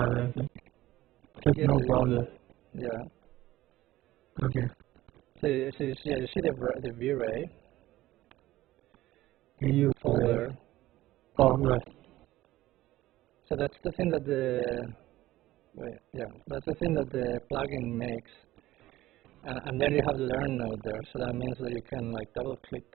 anything. Just Yeah, no so browser. yeah. Okay. Yeah, you see the VRAI EU folder. Oh, right. So that's the thing that that's the thing that the plugin makes. And then you have the learn node there, so that means that you can like double click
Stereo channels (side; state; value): left; quieter; 16.1 dB